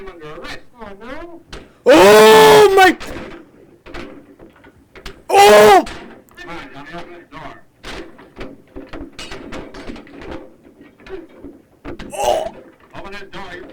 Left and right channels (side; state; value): both; identical; correlation 1.00